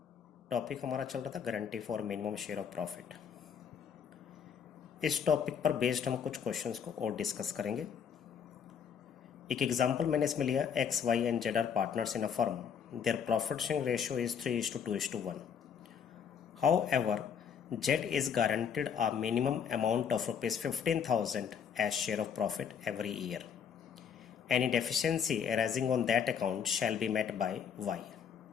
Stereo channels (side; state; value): right; quieter; 7.4 dB